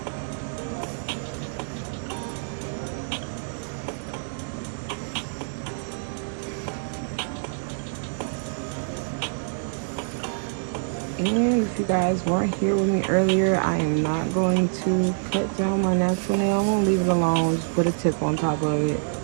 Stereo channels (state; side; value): silent; left; digital silence